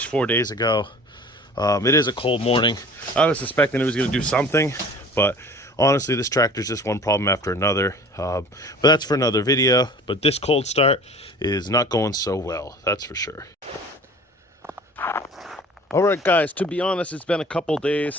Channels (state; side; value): normal; both; correlation 0.44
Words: 4 days ago. It is a cold morning. I was suspecting it was gonna do something, but honestly, this tractor's just one problem after another. But that's for another video. But this cold start is not going so well, that's for sure. All right, guys, to be honest, it's been a couple